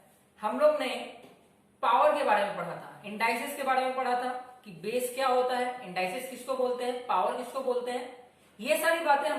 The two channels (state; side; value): identical; both; correlation 1.00